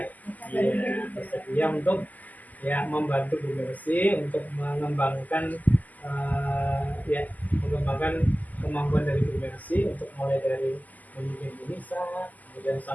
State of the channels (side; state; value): right; late; 0.080 ms